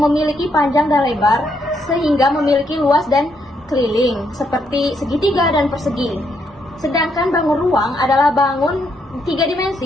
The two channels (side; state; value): both; normal; correlation 0.76